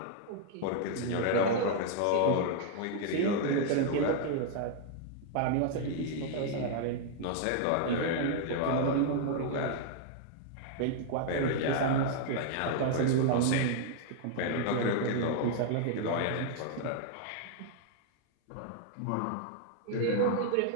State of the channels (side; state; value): both; different; correlation 0.00